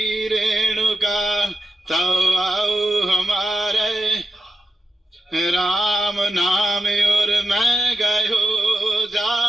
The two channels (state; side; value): normal; both; correlation 0.89